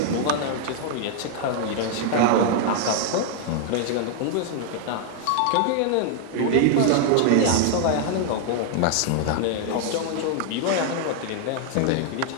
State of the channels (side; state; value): both; different; correlation 0.00